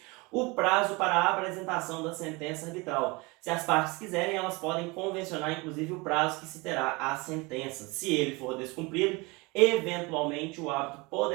O prazo para a apresentação da sentença arbitral. Se as partes quiserem, elas podem convencionar inclusive o prazo que se terá a sentença. Se ele for descumprido, eventualmente o árbitro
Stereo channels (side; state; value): left; quieter; 25.8 dB